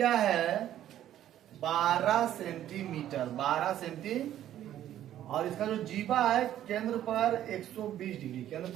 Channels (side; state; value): left; quieter; 11.9 dB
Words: है 12 सेंटीमीटर और इसका जो जीवा है केंद्र पर 120 डिग्री केंद्र